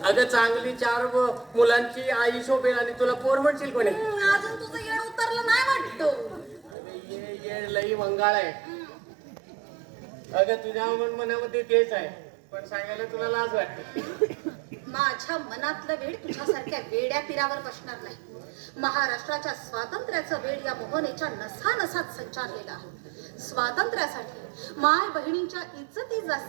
अगं चांगली 4 मुलांची आई शोभेल आणि तुला पोर म्हणशील कोणी. अजून तुझं येड उतरलं नाही वाटतो. ये लई मंगाळ आहे. अगं तुझ्या मनामध्ये तेच आहे पण सांगायला तुला लाज वाटते. माझ्या मनातलं वेळ तुझ्यासारख्या वेड्या पिरावर बसणार नाही. महाराष्ट्राच्या स्वातंत्र्याचं वेळ या मोहनेच्या नसानसात संचारलेला आहे. स्वातंत्र्यासाठी माय बहिणींच्या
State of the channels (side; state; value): left; drops out; at 6.8 s